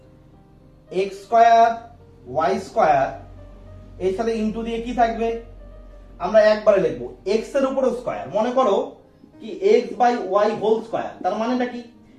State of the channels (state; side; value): identical; both; correlation 1.00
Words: x স্কয়ার y স্কয়ার এর সাথে ইনটু দিয়ে কি থাকবে আমরা একবারে লিখব x এর উপর স্কয়ার, মনে করো কি x by y whole square, তার মানেটা কি